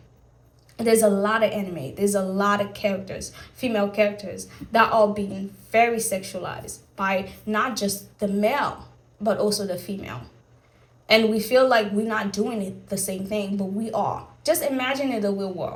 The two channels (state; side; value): identical; both; correlation 1.00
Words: anime, there's a lot of characters, female characters, that are being very sexualized by not just the male, but also the female. And we feel like we're not doing it the same thing, but we are. Just imagine in the real